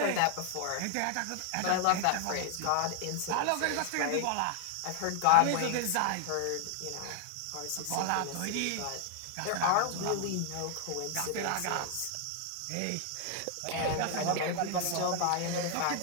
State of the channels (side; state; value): both; different; correlation 0.00